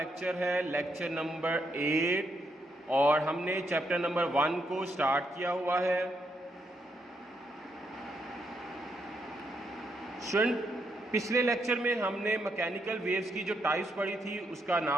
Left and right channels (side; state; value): both; normal; correlation 0.78